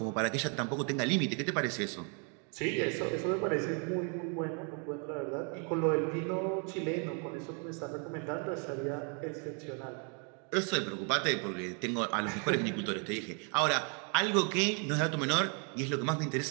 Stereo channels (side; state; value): left; quieter; 38.1 dB